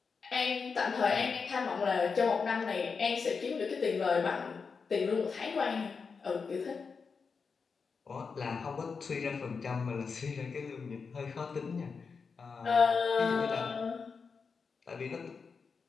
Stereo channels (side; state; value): right; quieter; 5.2 dB